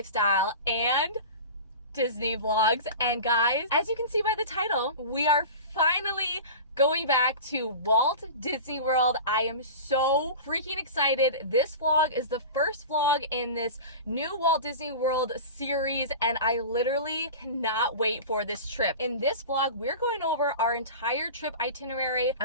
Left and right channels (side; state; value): both; inverted; correlation -0.32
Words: and Disney vlogs. And guys, as you can see by the title, we are finally going back to Walt Disney World. I am so freaking excited. This vlog is the first vlog in this new Walt Disney World series, and I literally cannot wait for this trip. In this vlog, we're going over our entire trip itinerary.